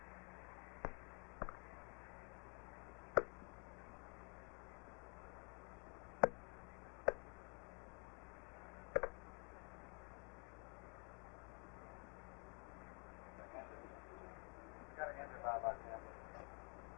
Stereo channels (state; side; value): quieter; right; 36.5 dB